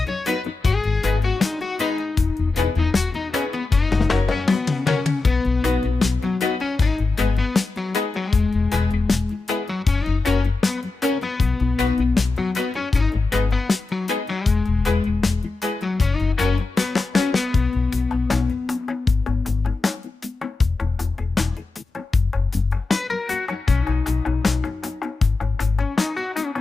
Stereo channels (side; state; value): right; quieter; 3.4 dB